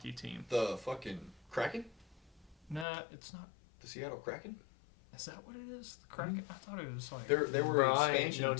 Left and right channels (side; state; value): right; drops out; at 2.9 s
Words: team. the fucking Kraken? Nah, it's not. The Seattle Kraken? Is that what it is? The Kraken? I thought it was like. They were an I expansion know